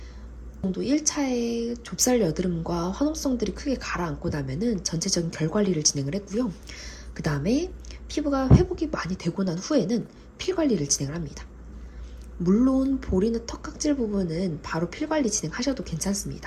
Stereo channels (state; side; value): identical; both; correlation 1.00